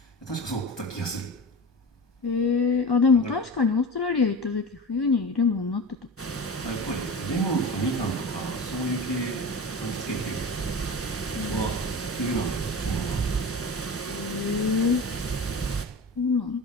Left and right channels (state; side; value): normal; both; correlation 0.31